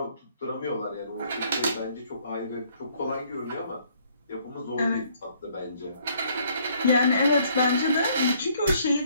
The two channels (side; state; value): both; inverted; correlation -0.64